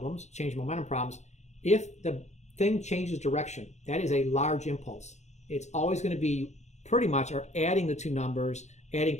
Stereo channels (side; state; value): right; late; 0.33 ms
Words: change momentum problems, if the thing changes direction, that is a large impulse. It's always going to be pretty much or adding the two numbers, adding